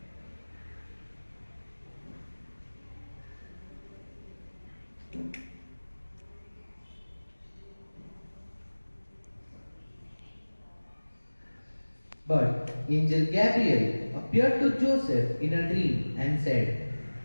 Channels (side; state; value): both; inverted; correlation -1.00